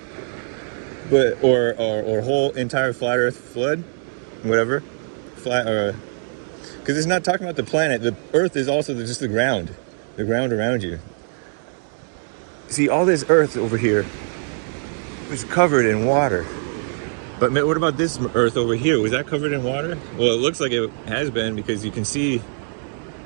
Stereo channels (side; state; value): left; silent; 64 dB below the other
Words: but or whole entire flat Earth flood, whatever, flat or because it's not talking about the planet. The Earth is also just the ground around you. See, all this Earth over here was covered in water. But what about this Earth over here? Was that covered in water? Well, it looks like it has been because you can see.